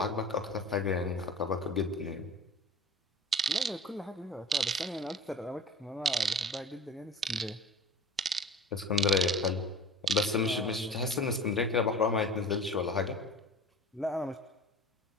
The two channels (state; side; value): normal; both; correlation 0.39